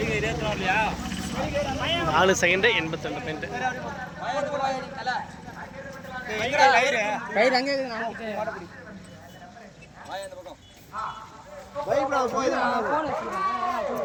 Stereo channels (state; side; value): identical; both; correlation 1.00